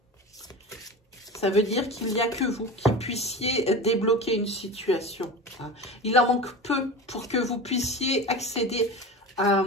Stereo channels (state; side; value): normal; both; correlation 0.30